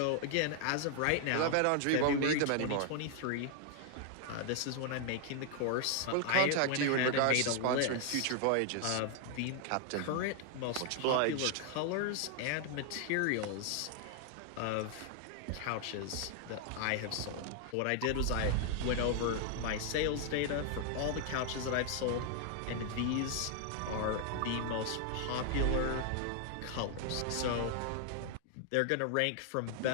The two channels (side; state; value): both; different; correlation 0.00